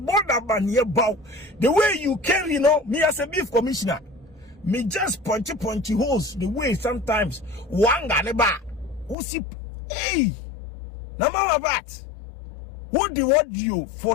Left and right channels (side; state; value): right; drops out; at 9.2 s